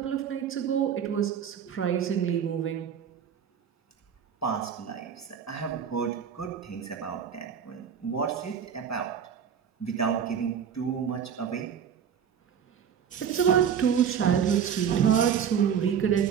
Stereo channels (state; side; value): quieter; left; 8.0 dB